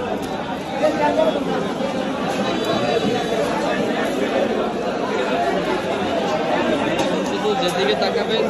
শুধু যেদিকে তাকাবেন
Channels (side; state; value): both; identical; correlation 1.00